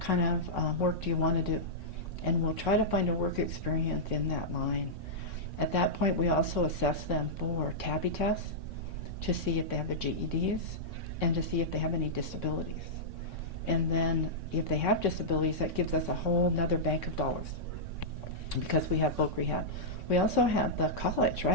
of work do you want to do? And we'll try to find a work experience in that line. At that point, we also assess them for TABI tests to see if they have their GEDs and to see if they have any disabilities. And then if they have disabilities, that gives us a whole nother bank of dollars because we have voc rehab. We also have the college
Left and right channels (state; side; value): late; right; 3.6 ms